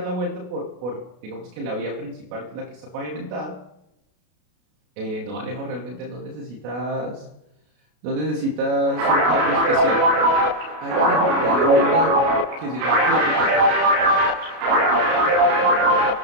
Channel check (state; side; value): late; left; 33 ms